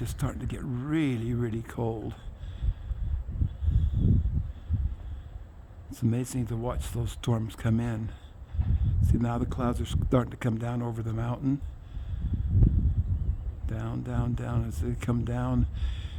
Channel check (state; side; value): identical; both; correlation 1.00